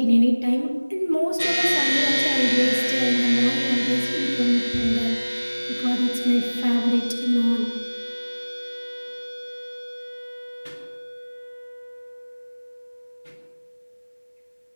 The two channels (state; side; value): inverted; both; correlation -1.00